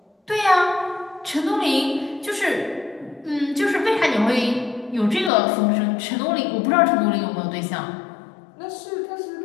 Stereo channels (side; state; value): right; drops out; at 5.3 s